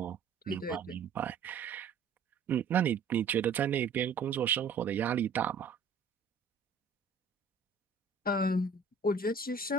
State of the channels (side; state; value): left; quieter; 4.9 dB